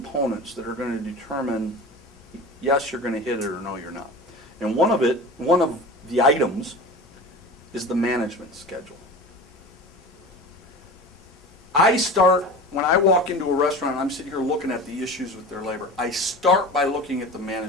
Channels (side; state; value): both; normal; correlation 0.34